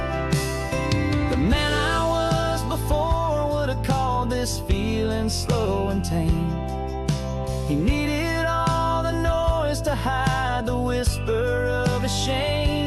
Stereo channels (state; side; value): identical; both; correlation 1.00